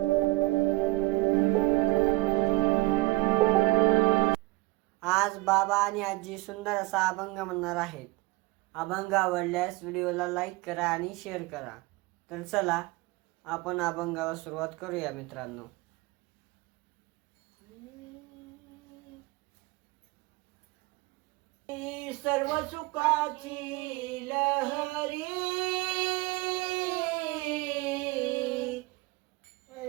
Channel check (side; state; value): left; quieter; 21.6 dB